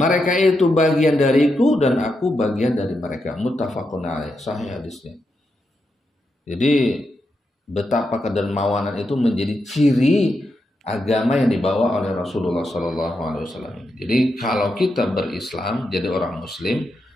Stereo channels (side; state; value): both; normal; correlation 0.84